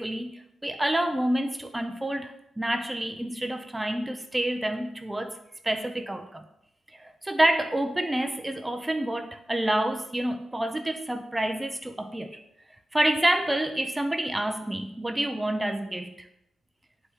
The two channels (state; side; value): normal; both; correlation 0.96